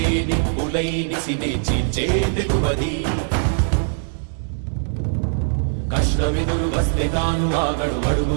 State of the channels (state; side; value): silent; left; digital silence